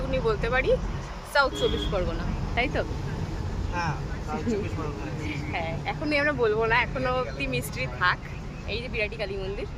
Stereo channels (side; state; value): both; identical; correlation 1.00